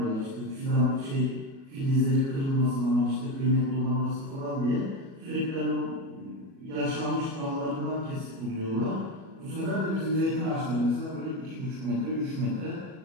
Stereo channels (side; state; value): left; late; 37 ms